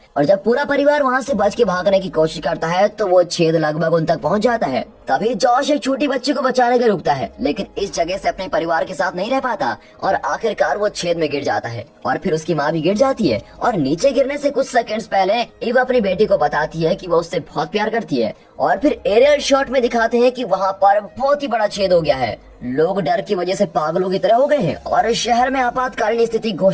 और जब पूरा परिवार वहाँ से बच के भागने की कोशिश करता है तो वो छेद लगभग उन तक पहुँच जाता है। तभी जॉश एक छोटी बच्ची को बचाने के रुकता है, लेकिन इस जगह से अपने परिवार के साथ नहीं रह पाता और आखिरकार वो छेद में गिर जाता है और फिर उसकी माँ भी गिर जाती है। और नीचे गिरने से कुछ सेकंड्स पहले ईव अपनी बेटी को बताती है कि वो उससे बहुत प्यार करती है। और फिर एरियल शॉट में दिखाते हैं कि वहाँ पर बहुत ही बड़ा छेद हो गया है। लोग डर की वजह से पागलों की तरह हो गए हैं और शहर में आपातकालीन स्थिति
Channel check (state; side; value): identical; both; correlation 1.00